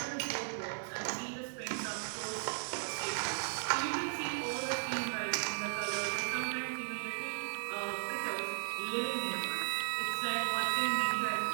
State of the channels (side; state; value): left; silent; 54 dB below the other